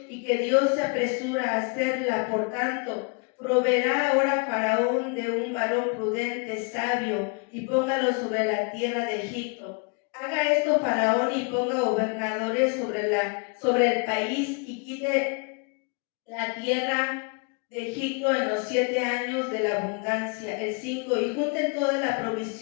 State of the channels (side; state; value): right; quieter; 33.9 dB